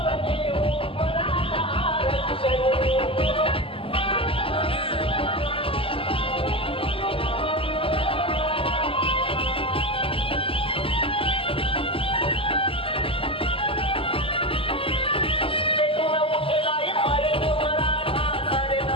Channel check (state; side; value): late; right; 0.26 ms